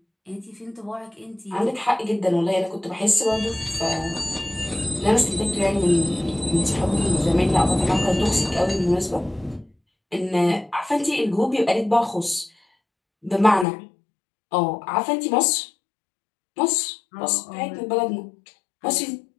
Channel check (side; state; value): right; drops out; at 13.7 s